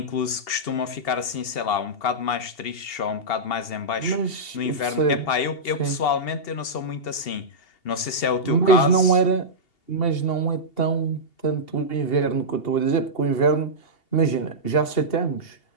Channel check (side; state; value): right; late; 2.8 ms